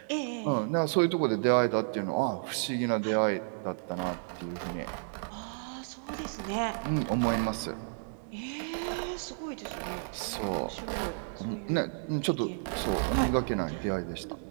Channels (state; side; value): silent; left; digital silence